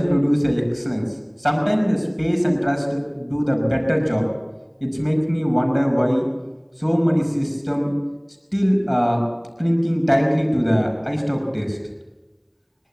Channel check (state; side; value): identical; both; correlation 1.00